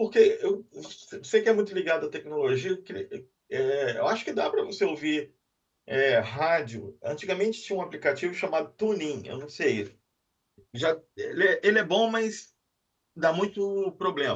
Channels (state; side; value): identical; both; correlation 1.00